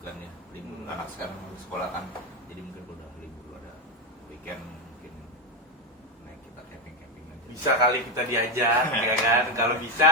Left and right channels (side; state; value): both; normal; correlation 0.11